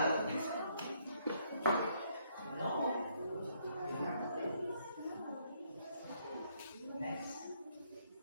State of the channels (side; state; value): both; inverted; correlation -0.70